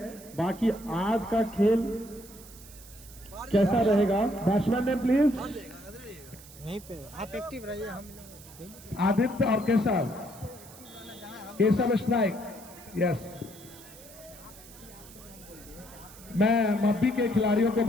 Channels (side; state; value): right; noise; hiss, 19 dB below the sound